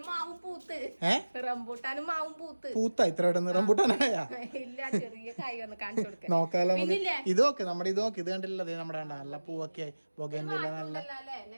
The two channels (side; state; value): both; inverted; correlation -1.00